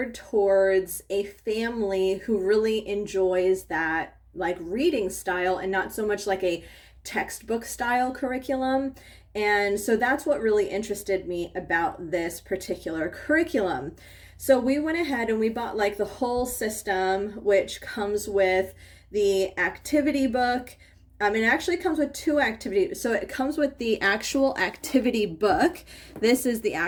towards a family who really enjoys that like reading style and not so much like a textbook style curriculum. And so that's what really interested me about this particular curriculum. So we went ahead and we bought like the whole system, which comes with the activity book. It actually comes with two activities. So it comes with the actual activity book. This is the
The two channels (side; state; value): both; identical; correlation 1.00